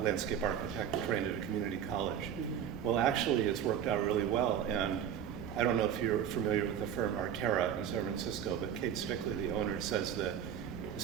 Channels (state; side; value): quieter; left; 9.1 dB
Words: landscape architect trained at a community college. Well, actually, it's worked out really well. And I don't know if you're familiar with the firm Artera in San Francisco, but Kate Stickley, the owner, says that the